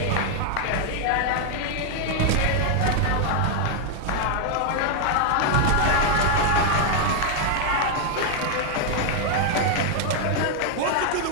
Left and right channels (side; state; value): both; different; correlation 0.00